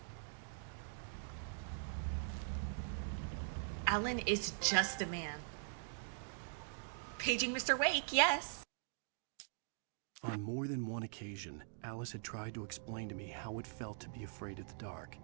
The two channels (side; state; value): left; silent; digital silence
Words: Alan is just a man. Paging Mr. Wake, yes. On more than one occasion, Alice had tried to explain to me how it felt to be afraid of the dark.